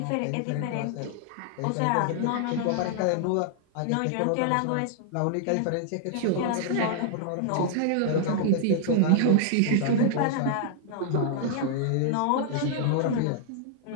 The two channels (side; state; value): both; different; correlation -0.01